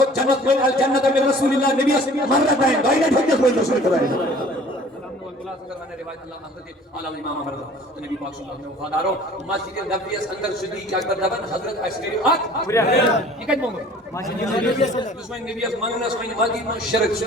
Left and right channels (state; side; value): normal; both; correlation 0.49